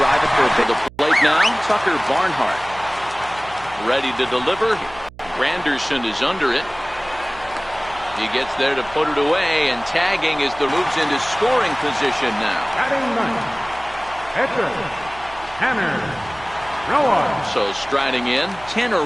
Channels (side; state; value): right; noise; hum, 20 dB below the sound